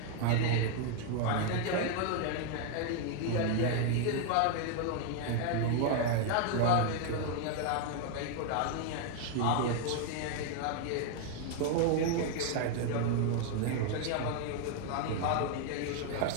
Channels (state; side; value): different; both; correlation 0.01